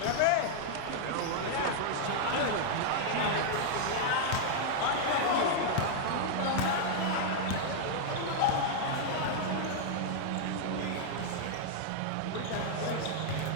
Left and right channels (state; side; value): different; both; correlation -0.01